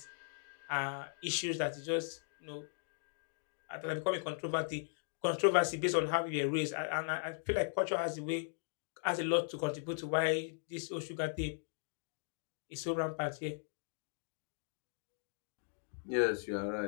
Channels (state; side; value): silent; right; digital silence